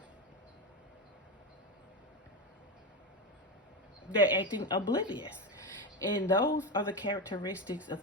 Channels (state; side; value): normal; both; correlation 0.16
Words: They're acting oblivious. And those are the characteristics of